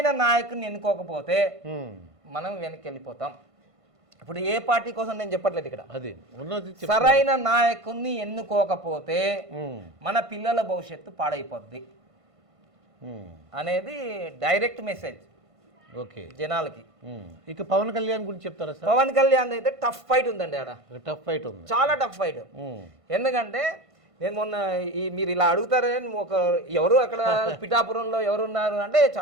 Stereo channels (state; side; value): late; left; 1.5 ms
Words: నాయకుని ఎన్నుకోకపోతే మనం వెనక్కి వెళ్ళిపోతాం. ఇప్పుడు ఏ పార్టీ కోసం నేను చెప్పట్లేదు ఇక్కడ. సరైన నాయకుని ఎన్నుకోకపోతే మన పిల్లల భవిష్యత్తు పాడైపోద్ది అనేది డైరెక్ట్ మెసేజ్ జనాలకి. ఇక పవన్ కళ్యాణ్ గురించి చెప్తారా? పవన్ కళ్యాణ్ అయితే టఫ్ ఫైట్ ఉందండి. ఆడ టఫ్ ఫైట్ ఉంది, చాలా టఫ్ ఫైట్. ఎందుకంటే నేను మొన్న మీరు ఇలా అడుగుతారని ఎవరు అక్కడ పిఠాపురంలో ఎవరున్నారు అంటే